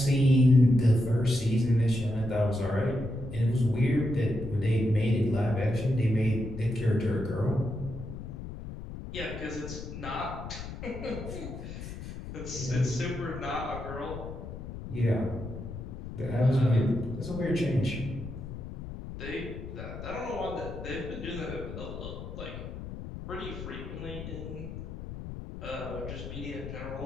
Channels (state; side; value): noise; left; rumble, 9 dB below the sound